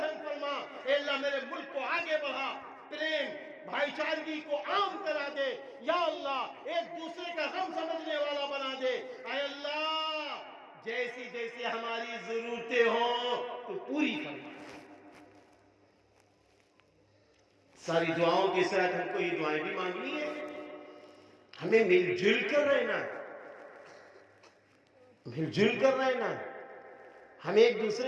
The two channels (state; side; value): identical; both; correlation 1.00